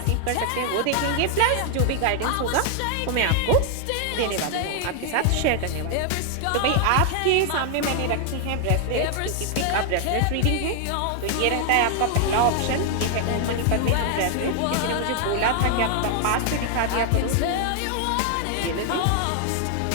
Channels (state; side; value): different; both; correlation 0.00